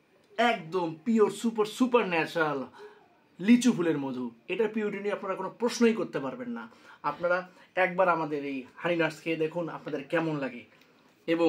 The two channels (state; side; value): identical; both; correlation 1.00